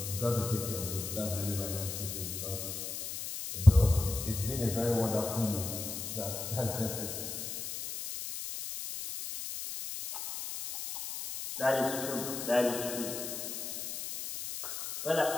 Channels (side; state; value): left; noise; hiss, 6 dB below the sound